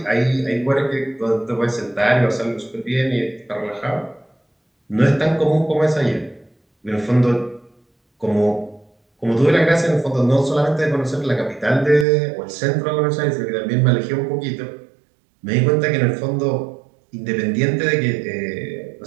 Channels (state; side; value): drops out; left; at 12.1 s